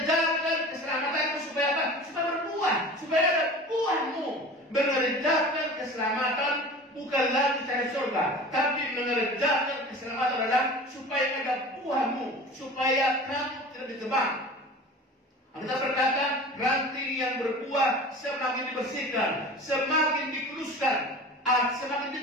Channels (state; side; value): normal; both; correlation 0.38